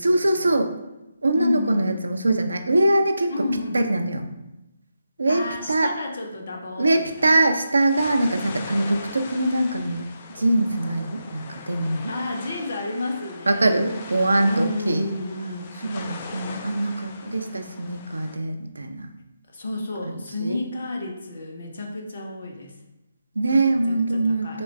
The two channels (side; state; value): both; inverted; correlation -0.88